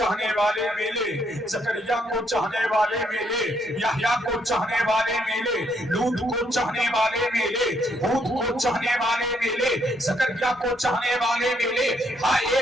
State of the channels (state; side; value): normal; both; correlation 0.72